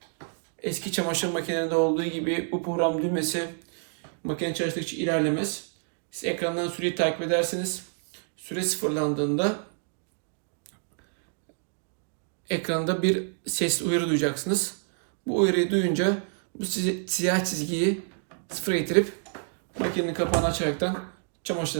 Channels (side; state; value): left; silent; 59 dB below the other